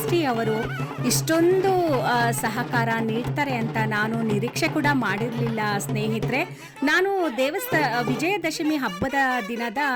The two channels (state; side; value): identical; both; correlation 1.00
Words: ಅವರು ಇಷ್ಟೊಂದು ಸಹಕಾರ ನೀಡ್ತಾರೆ ಅಂತ ನಾನು ನಿರೀಕ್ಷೆ ಕೂಡ ಮಾಡಿರಲಿಲ್ಲ ಸ್ನೇಹಿತರೆ. ನಾನು ವಿಜಯದಶಮಿ ಹಬ್ಬದ